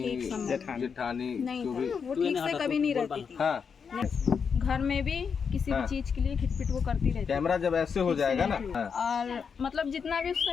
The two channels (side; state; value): right; quieter; 6.3 dB